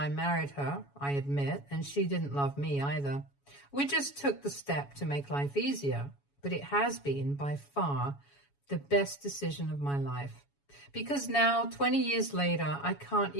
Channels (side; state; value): right; late; 7.1 ms